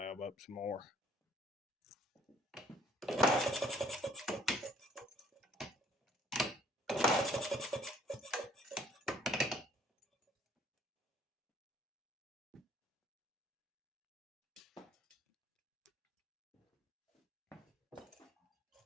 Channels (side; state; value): both; normal; correlation 0.60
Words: up some more.